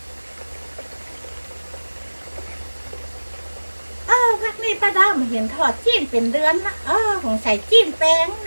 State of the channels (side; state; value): both; inverted; correlation -1.00